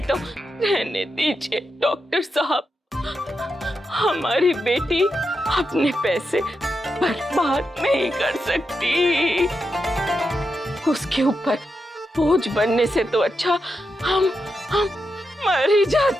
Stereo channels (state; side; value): normal; both; correlation 0.86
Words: तो रहने दीजिए डॉक्टर साहब। हमारी बेटी अपने पैसे बर्बाद नहीं कर सकती। उसके ऊपर बोझ बनने से तो अच्छा हम मर ही